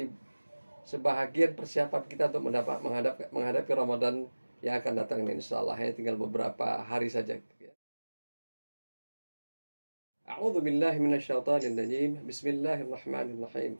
sebahagian persiapan kita untuk menghadapi Ramadan yang akan datang ini, insyaallah. Hanya tinggal beberapa hari saja. A'udzu billahi minasyaitonir rajim. Bismillahirrahmanirrahim.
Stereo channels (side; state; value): both; inverted; correlation -1.00